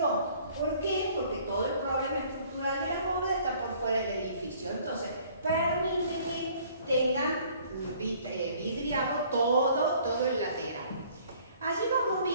¿Por qué? Porque todo el problema estructural de la bóveda está por fuera del edificio. Entonces, permite que tengan vidriado todo el lateral. Allí vamos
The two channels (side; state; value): both; inverted; correlation -0.57